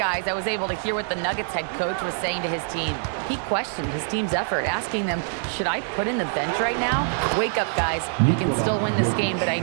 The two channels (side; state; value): left; silent; 62 dB below the other